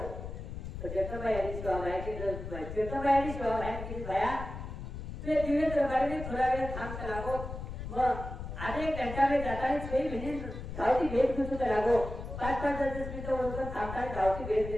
तो जगदंबाई यांनी सेवा माहिती जगदंबाई यांनी सेवा माहिती केली भया ते दिवे दरबारी थोडा वेळ थांब करावो मग आधे एक घंटा में जाताना 6 मिनिट धावती भेट घेतो करावो 5-5 मिनिटं ओळखून थांबताना धावती भेट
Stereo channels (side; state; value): left; noise; rumble, 8 dB below the sound